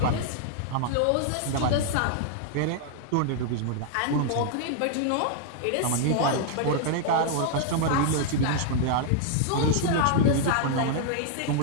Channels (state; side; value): different; both; correlation 0.00